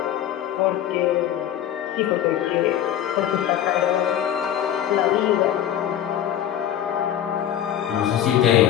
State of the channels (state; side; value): quieter; right; 10.8 dB